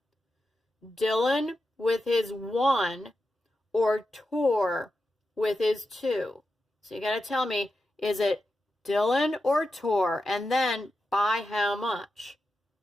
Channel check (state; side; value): normal; both; correlation 0.89